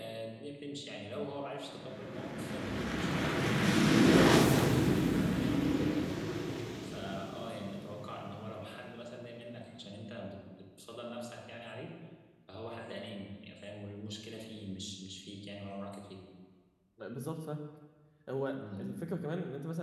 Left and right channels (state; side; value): identical; both; correlation 1.00